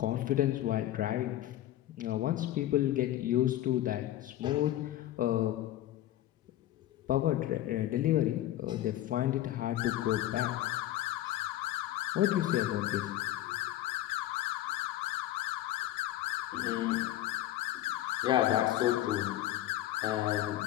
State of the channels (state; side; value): quieter; right; 13.9 dB